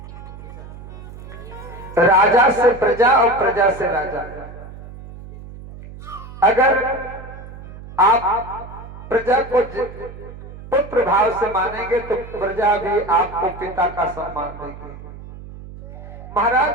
राजा से प्रजा और प्रजा से राजा। अगर आप प्रजा को पुत्र भाव से मानेंगे तो प्रजा भी आपको पिता का सम्मान देगी।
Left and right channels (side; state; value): right; noise; hum, 14 dB below the sound